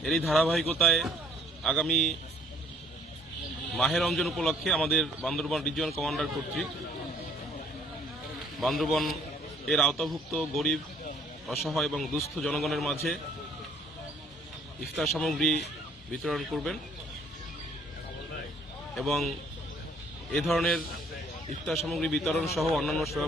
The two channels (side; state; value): both; normal; correlation 0.60